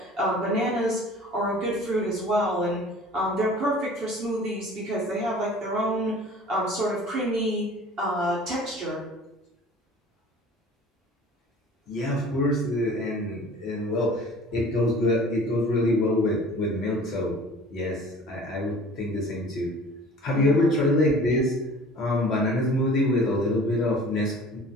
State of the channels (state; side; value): normal; both; correlation 0.46